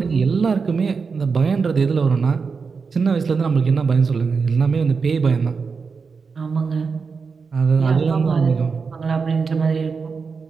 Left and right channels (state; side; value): quieter; left; 5.1 dB